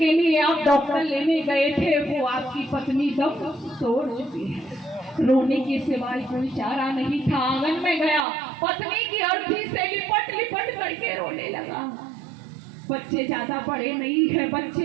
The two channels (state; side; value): drops out; left; at 8.2 s